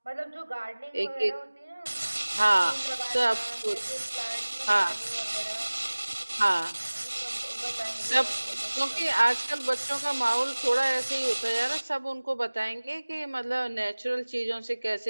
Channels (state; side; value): inverted; both; correlation -1.00